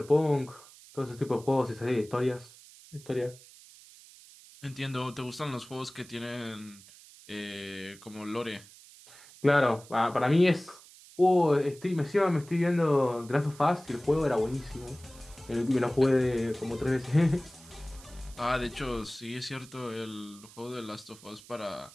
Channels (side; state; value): right; noise; hiss, 21 dB below the sound